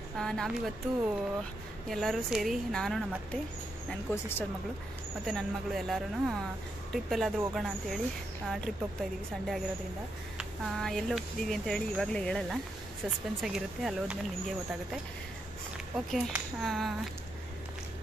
ನಾವಿವತ್ತು ಎಲ್ಲರೂ ಸೇರಿ, ನಾನು, ನಮ್ಮ ಅತ್ತೆ, ನನ್ನ ಕೋ-ಸಿಸ್ಟರ್ ಮಗಳು ಮತ್ತು ನನ್ನ ಮಗಳು ಎಲ್ಲರೂ ಟ್ರಿಪ್ ಎಲ್ಲಾದರೂ ಹೋಗೋಣ ಅಂಥೇಳಿ ಟ್ರಿಪ್ ಹೋಗ್ತಾಯಿದ್ದೀವಿ. ಸಂಡೇ ಆಗಿರೋದ್ರಿಂದ ಎಲ್ಲಿ ಹೋಗ್ತಿದ್ದೀವಿ ಅಂತೇಳಿ ಇವಾಗಲೇ ಹೇಳಲ್ಲ, ಸಸ್ಪೆನ್ಸ್ ಆಗಿರುತ್ತೆ. ಅಲ್ಲಿ ಹೋದ್ಮೇಲೆ ನಿಮಗೆ ಗೊತ್ತಾಗುತ್ತೆ. ಓಕೆ,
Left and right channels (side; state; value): both; normal; correlation 0.82